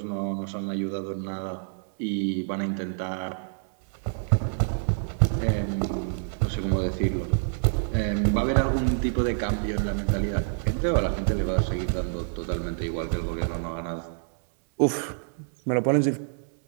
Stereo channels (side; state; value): left; silent; 60 dB below the other